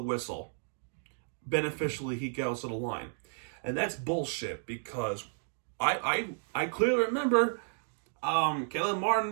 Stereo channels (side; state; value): left; silent; digital silence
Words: whistle. Beneficially, he goes to the line. And that's bullshit because I clearly remember Caleb